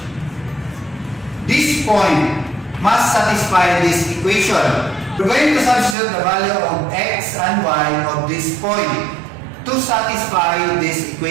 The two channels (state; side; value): drops out; left; at 6.0 s